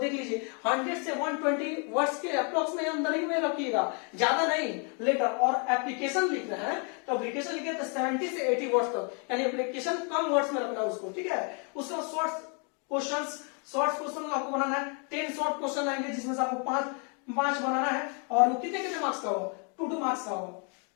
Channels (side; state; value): right; quieter; 37.8 dB